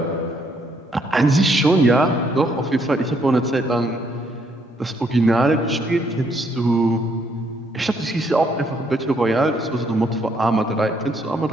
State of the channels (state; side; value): normal; both; correlation 0.70